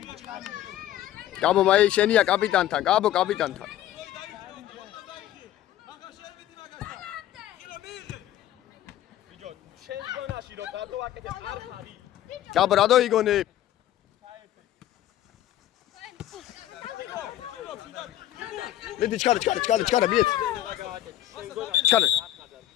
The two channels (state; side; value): quieter; right; 13.0 dB